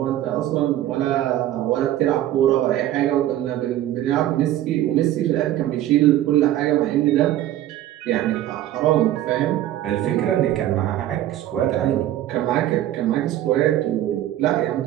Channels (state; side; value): quieter; left; 13.1 dB